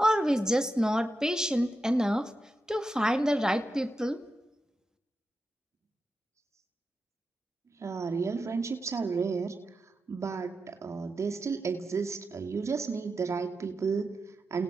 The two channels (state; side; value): normal; both; correlation 0.89